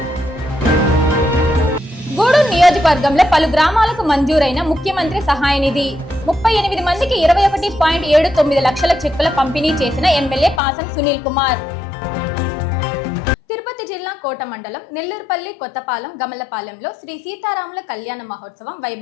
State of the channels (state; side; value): drops out; right; at 10.6 s